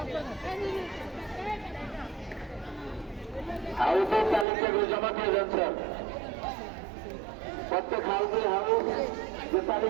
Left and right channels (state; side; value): drops out; left; at 4.5 s